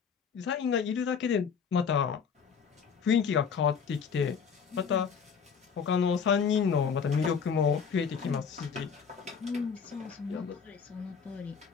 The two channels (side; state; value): right; quieter; 6.4 dB